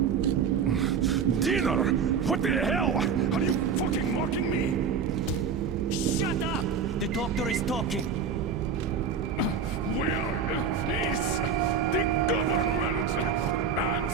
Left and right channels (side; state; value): left; quieter; 6.1 dB